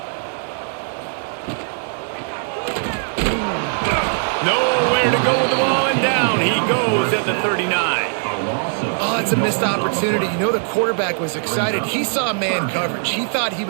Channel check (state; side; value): silent; left; 65 dB below the other